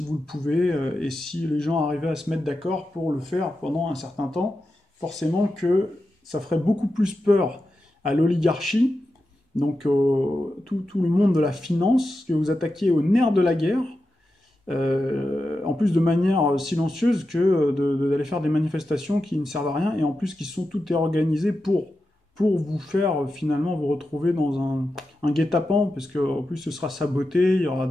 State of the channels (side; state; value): both; normal; correlation 0.90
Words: vous le pouvez, et si les gens arrivaient à se mettre d'accord pour le faire pendant un certain temps, forcément que ça ferait beaucoup plus peur à l'oligarchie, donc tout le monde de la finance, que vous attaquiez au nerf de la guerre, en plus de manière silencieuse que d'aller faire des manifestations qui ne servent à rien, et en plus qui sont toutes organisées pour vous faire finalement vous retrouver dans un guet-apens, parce qu'en plus ce sera saboté, il y aura